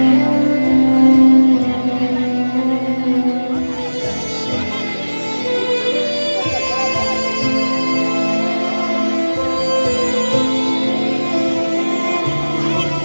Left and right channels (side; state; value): both; inverted; correlation -1.00